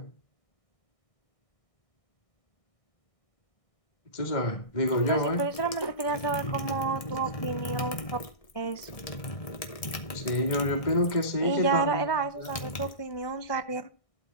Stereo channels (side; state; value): right; late; 1.7 ms